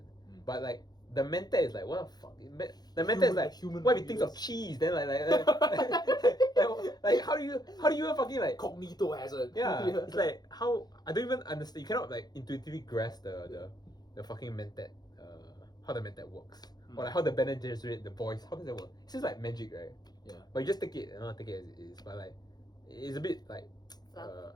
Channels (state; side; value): late; right; 0.19 ms